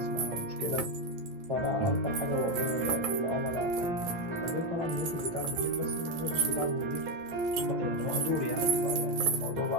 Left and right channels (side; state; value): left; late; 8.9 ms